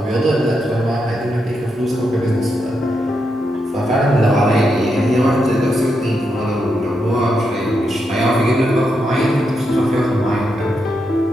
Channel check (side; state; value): both; normal; correlation 0.83